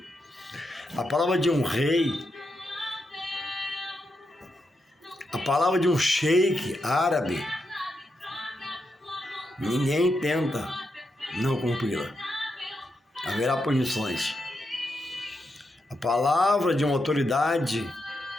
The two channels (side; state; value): both; normal; correlation 0.84